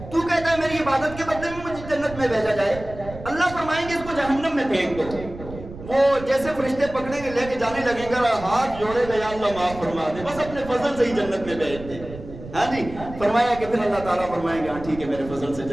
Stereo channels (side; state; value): right; noise; rumble, 13 dB below the sound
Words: تو کہتا ہے میری عبادت کے بدلے میں مجھے جنت میں بھیجا جائے. اللہ فرمائیں گے اس کو جہنم میں پھینک دو. وہ جیسے فرشتے پکڑیں گے لے کے جانے لگیں گے, ہاتھ جوڑے گا یا اللہ معاف فرما دے, بس اپنے فضل سے ہی جنت میں بھیج دے. ہاں جی. فرمایا کہ پھر اللہ تعالیٰ فرمائیں گے ہاں ٹھیک ہے میرے فضل سے